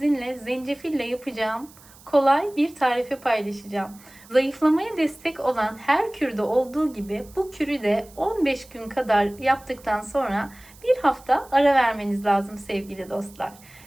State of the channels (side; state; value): right; noise; hiss, 24 dB below the sound